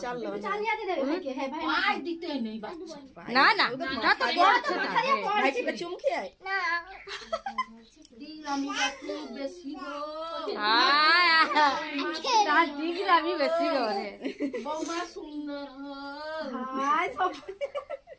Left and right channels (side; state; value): both; identical; correlation 1.00